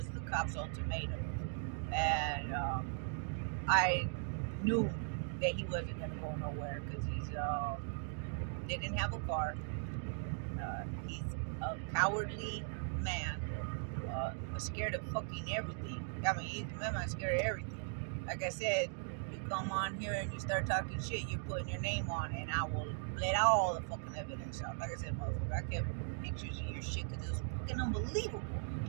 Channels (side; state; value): left; silent; 52 dB below the other